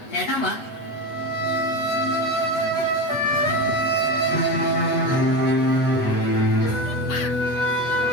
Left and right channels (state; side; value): late; right; 8.1 ms